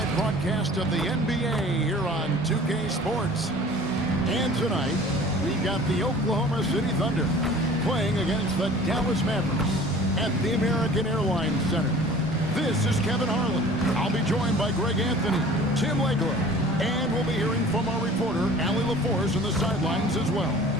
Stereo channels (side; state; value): both; normal; correlation 0.46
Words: broadcast of the NBA here on 2K Sports. And tonight, we've got the Oklahoma City Thunder playing against the Dallas Mavericks at the American Airlines Center. This is Kevin Harlan. I'll be joined by Greg Anthony, Tim Legler, and we'll be hearing from our reporter, Allie LaForce, on the sidelines as well.